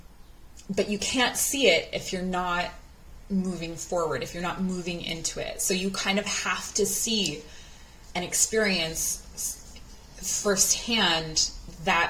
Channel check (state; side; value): identical; both; correlation 1.00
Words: But you can't see it if you're not moving forward, if you're not moving into it. So you kind of have to see and experience firsthand